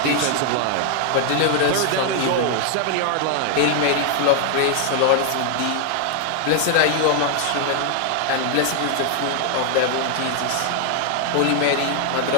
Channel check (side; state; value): both; different; correlation 0.00